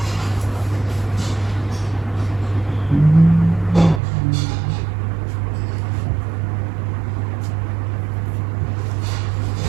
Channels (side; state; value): left; drops out; at 4.0 s